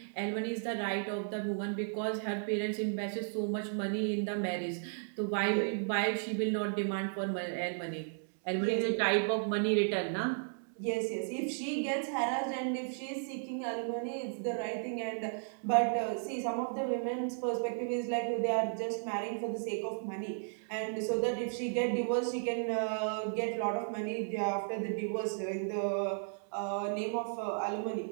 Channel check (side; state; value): left; silent; digital silence